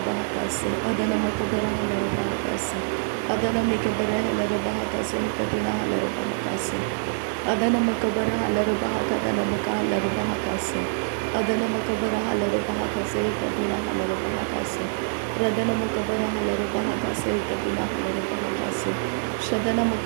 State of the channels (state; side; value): silent; left; 62 dB below the other